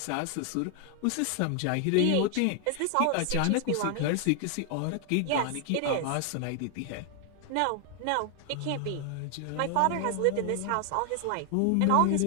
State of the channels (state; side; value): different; both; correlation 0.00